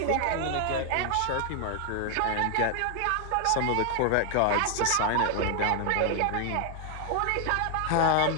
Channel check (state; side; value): different; both; correlation 0.00